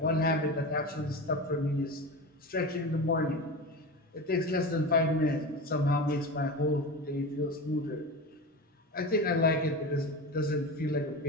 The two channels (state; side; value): normal; both; correlation 0.26